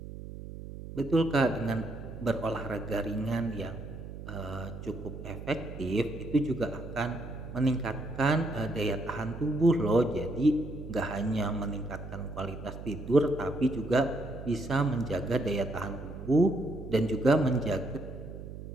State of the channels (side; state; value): right; noise; hum, 11 dB below the sound